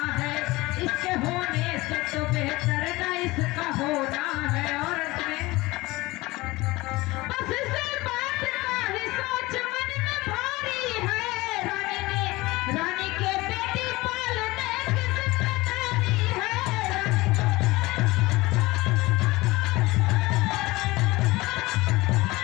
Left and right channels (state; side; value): quieter; right; 20.7 dB